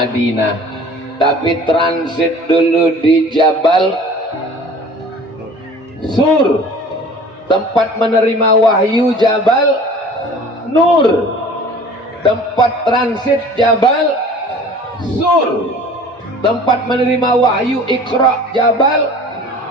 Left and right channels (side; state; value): both; normal; correlation 0.46